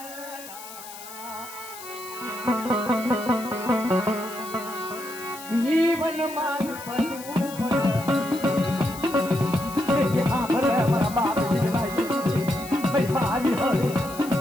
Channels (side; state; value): left; noise; hiss, 14 dB below the sound